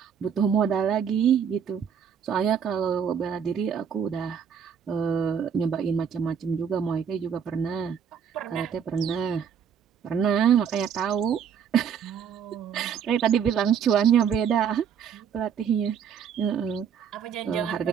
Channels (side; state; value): left; quieter; 7.6 dB